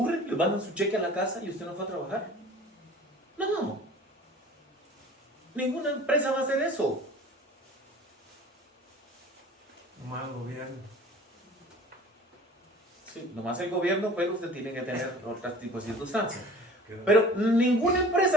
¿Le mandan su cheque a la casa y usted no fue a trabajar? No. Ninguna empresa va a hacer eso. Nomás el gobierno. Sí, nomás el gobierno, pero usted tiene que tener otro tipo de circunstancias. Pero ninguna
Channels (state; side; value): normal; both; correlation 0.44